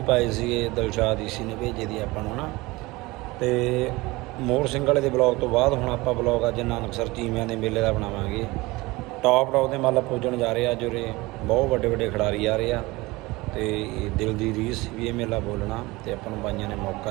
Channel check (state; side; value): quieter; left; 21.7 dB